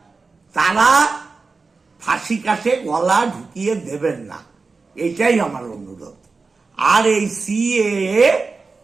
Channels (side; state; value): left; quieter; 4.2 dB